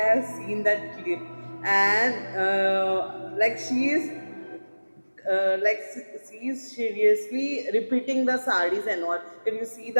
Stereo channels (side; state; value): both; inverted; correlation -1.00